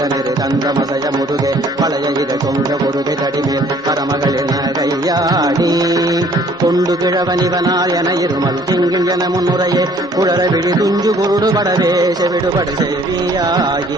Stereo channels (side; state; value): both; normal; correlation 0.57